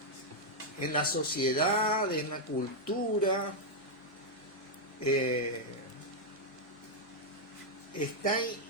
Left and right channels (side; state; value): both; normal; correlation -0.02